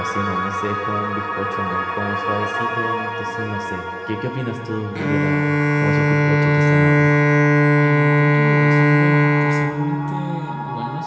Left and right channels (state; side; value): identical; both; correlation 1.00